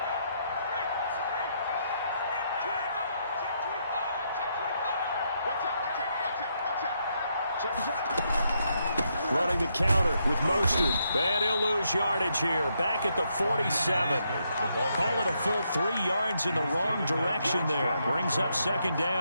Running the counter with Mostert. And he'll lose yardage here. Back at the 47. Call it a full 3 yards in the wrong direction there. Brings up second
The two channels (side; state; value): both; inverted; correlation -0.78